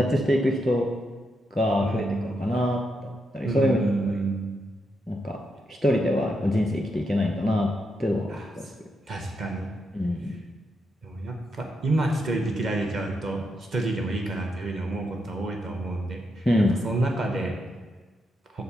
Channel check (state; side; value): normal; both; correlation 0.82